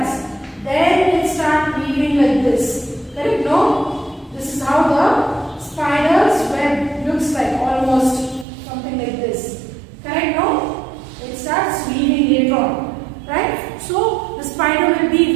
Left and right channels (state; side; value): drops out; left; at 8.5 s